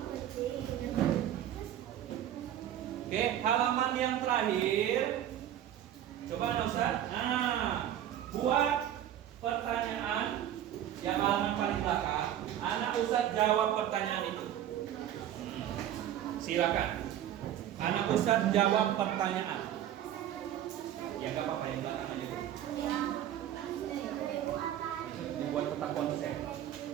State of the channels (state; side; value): quieter; left; 11.2 dB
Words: Oke, halaman yang terakhir. Coba Ustaz. Nah, buat pertanyaan yang halaman paling belakang. Anak Ustaz jawab pertanyaan itu. Silakan. Anak Ustaz jawab pertanyaan. Ya nggak apa-apa yang belakang aja. Dibuat peta konsep